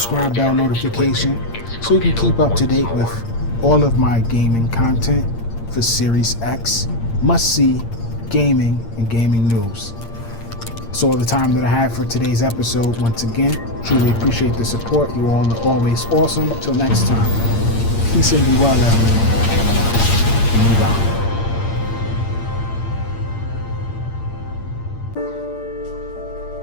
bell notification so you can keep up to date with all of my gaming content for Series X, must-see gaming and gaming news. That's all the time that I have for today's episode. Once again, truly appreciate the support. You all are always awesome. Till next time, peace and be well, everyone. And move out.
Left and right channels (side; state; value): right; late; 8.7 ms